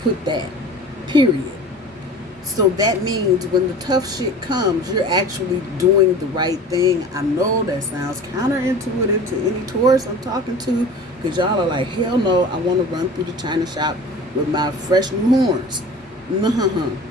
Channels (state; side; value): normal; both; correlation 0.39